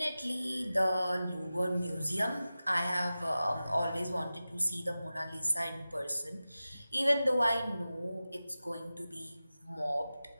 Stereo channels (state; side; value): inverted; both; correlation -0.95